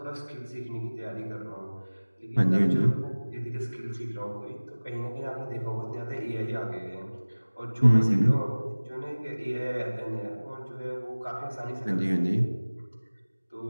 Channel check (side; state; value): both; inverted; correlation -1.00